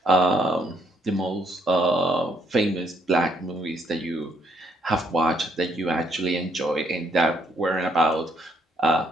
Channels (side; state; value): both; normal; correlation 0.71